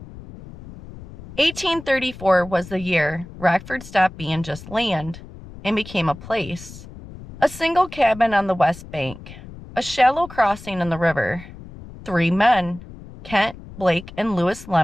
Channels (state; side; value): noise; left; rumble, 16 dB below the sound